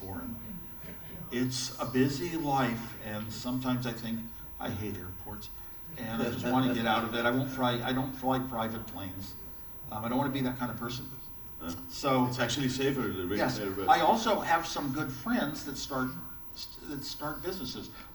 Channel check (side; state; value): both; identical; correlation 1.00